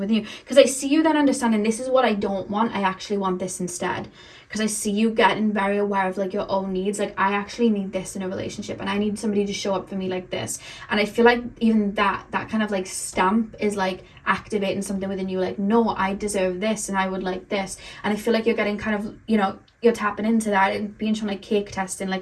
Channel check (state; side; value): identical; both; correlation 1.00